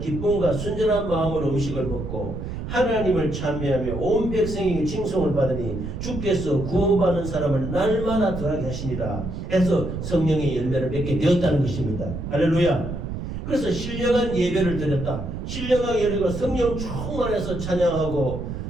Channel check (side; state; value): right; noise; rumble, 6 dB below the sound